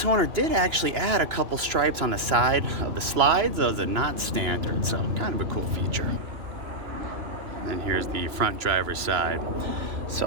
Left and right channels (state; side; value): late; left; 2.9 ms